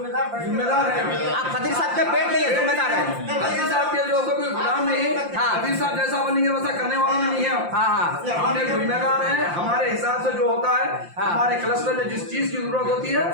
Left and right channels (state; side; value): late; left; 5.7 ms